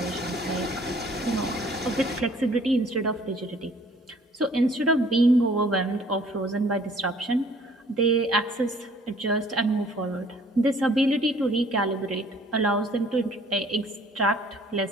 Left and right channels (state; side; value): normal; both; correlation 0.57